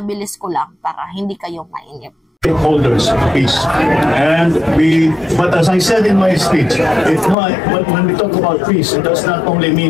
ko lang para hindi kayo mainip. Stakeholders peace, and but as I said in my speech, when we talk about peace, it does not only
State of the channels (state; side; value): drops out; right; at 7.4 s